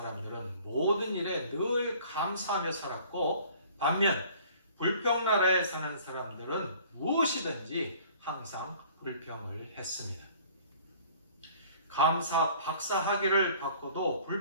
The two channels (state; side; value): inverted; both; correlation -0.52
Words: 모든 일에 늘 감사하며 살았고, 반면 불평 나라에 사는 사람들은 무엇이든지 항상 불평을 했습니다. 감사 박사 학위를 받고도